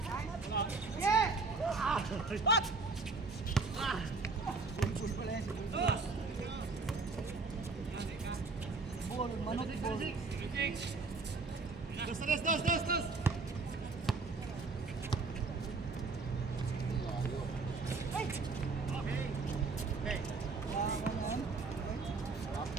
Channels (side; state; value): left; quieter; 4.0 dB